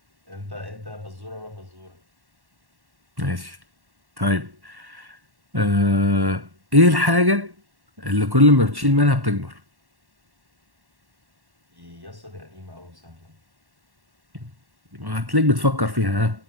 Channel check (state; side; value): late; left; 1.1 ms